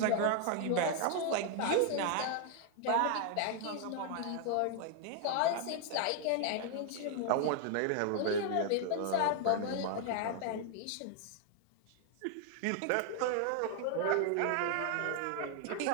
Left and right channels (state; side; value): different; both; correlation 0.00